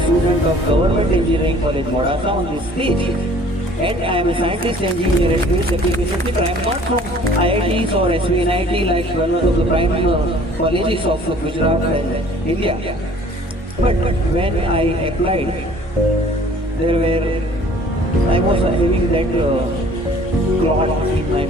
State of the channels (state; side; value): normal; both; correlation 0.53